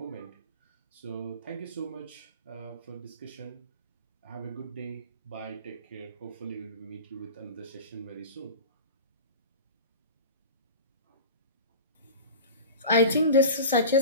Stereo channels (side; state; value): both; inverted; correlation -0.33